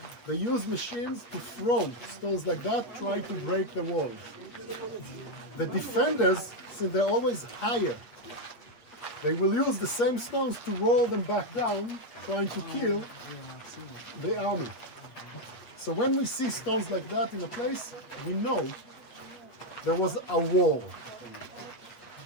They use machines to throw stones like that, try to break the walls. The defenders, since they're always higher, they will use the same stones to roll them back down, trying to kill the army. So when we see stones like that in a place, we know there was a war.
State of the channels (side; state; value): right; late; 8.5 ms